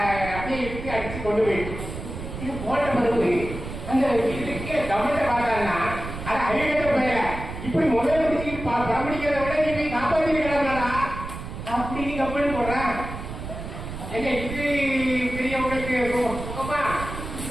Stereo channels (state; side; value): noise; right; rumble, 9 dB below the sound